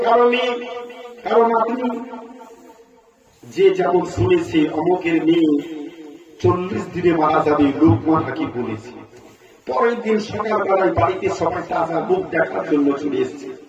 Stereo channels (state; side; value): identical; both; correlation 1.00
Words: কারো মেয়ে, কারো নাতনি, যে যেমন শুনেছে অমুকের মেয়ে 40 দিনে মারা যাবে, লোকমান হাকিম বলেছে। পরের দিন সকালবেলায় বাড়িতে সবাই তাজা মুখ দেখার জন্য চলে এসেছে।